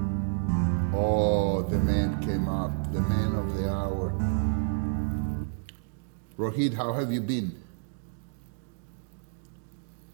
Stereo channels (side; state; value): left; silent; digital silence